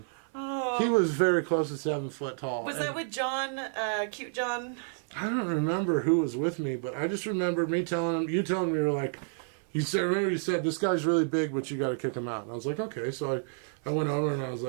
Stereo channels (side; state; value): left; silent; 57 dB below the other